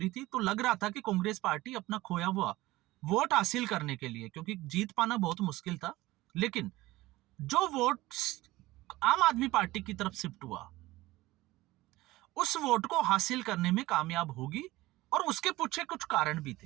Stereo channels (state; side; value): quieter; left; 18.4 dB